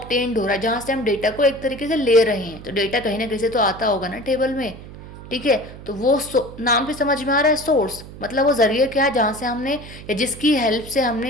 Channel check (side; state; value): right; noise; hum, 15 dB below the sound